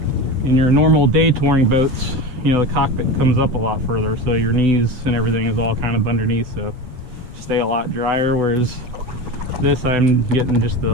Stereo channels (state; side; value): late; left; 7.9 ms